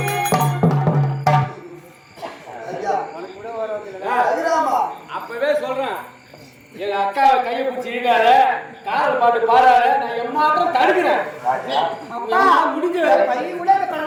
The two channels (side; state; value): both; identical; correlation 1.00